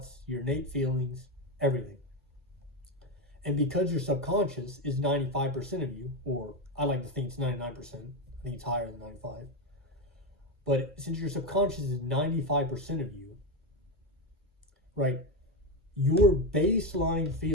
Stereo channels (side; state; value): both; normal; correlation 0.12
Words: your innate feelings, everything. And because your subconscious is 95% of you, or I like to think it's 99%, I think it's higher than 95. But since your subconscious is 95% of you, right, your baseline